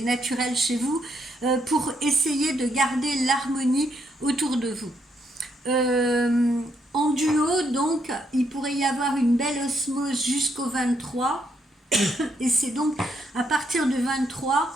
naturelle chez vous, pour essayer de garder l'harmonie autour de vous. En duo, donc, il pourrait y avoir une belle osmose jusqu'au 23, et c'est donc à partir du 23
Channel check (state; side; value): normal; both; correlation 0.75